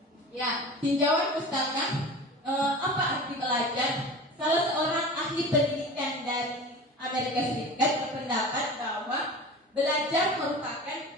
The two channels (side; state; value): both; normal; correlation 0.35